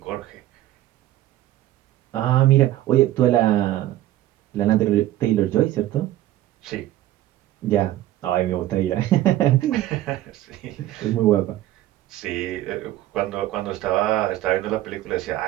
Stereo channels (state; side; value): quieter; left; 14.4 dB